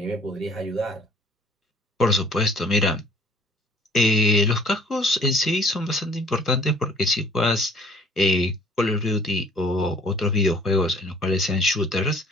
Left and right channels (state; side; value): normal; both; correlation 0.54